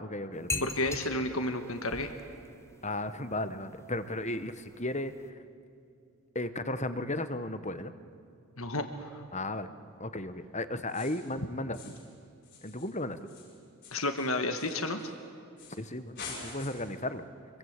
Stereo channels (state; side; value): normal; both; correlation 0.15